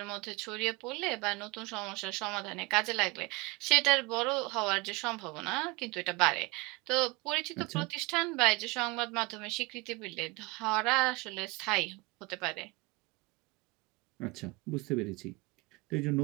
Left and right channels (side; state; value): left; quieter; 25.1 dB